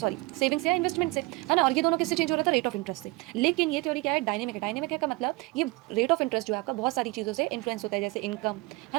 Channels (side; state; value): left; quieter; 22.9 dB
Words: सेविंग से या इन्वेस्टमेंट से, है ना। और ये दोनों किससे चेंज हो रहा था, रेट ऑफ इंटरेस्ट से। लेकिन ये थ्योरी क्या है, डायनेमिक है। डायनेमिक है का मतलब ये रेट ऑफ इंटरेस्ट जो है आपका बहुत सारी चीज़ों से इन्फ्लुएंस होता है, जैसे इनकम, है